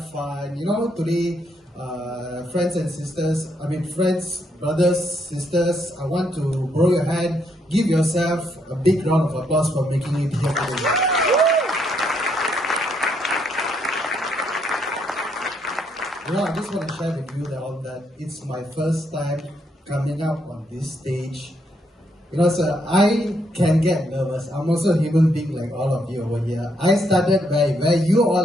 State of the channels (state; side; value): normal; both; correlation 0.75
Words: fun. You know, today, friends and sisters, friends, brothers, sisters, I want to borrow your hand. Give yourself a big round of applause for making it here today. You know, I just want to share with you all that it's my first time coming up on this stage. You know, sir, I can get nervous. I'm also a human being like all of you over here. I started where you